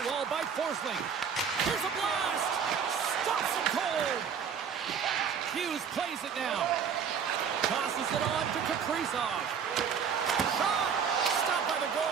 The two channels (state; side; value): quieter; left; 7.0 dB